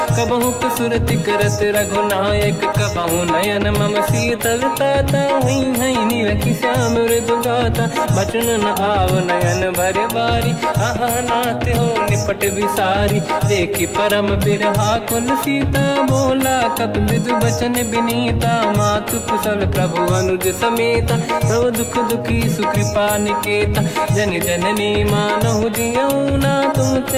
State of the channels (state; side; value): identical; both; correlation 1.00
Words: कबहु सुरति करत रघुनायक, कबहु नयन मम शीतल ताता। हई हई नीलखि श्याम मृदु गाता, बचन न आव नयन भर बारी। आहा नाथ हो निपट विसारी, देखी परम बिरहा कुल सीता। बोला कपि विदु बचन बिनीता, मातु कुशल प्रभु अनुज समेता। सब दुख दुखी सुकृपा निकेता, जन जननी मानहु जियौना।